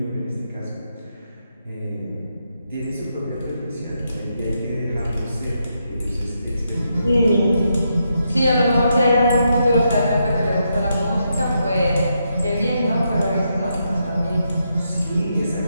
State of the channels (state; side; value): inverted; both; correlation -0.81